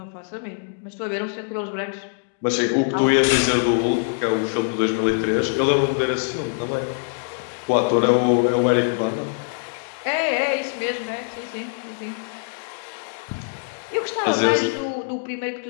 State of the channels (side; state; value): right; silent; digital silence